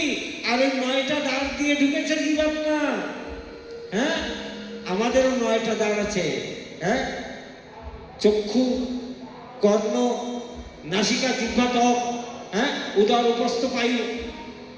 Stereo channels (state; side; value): identical; both; correlation 1.00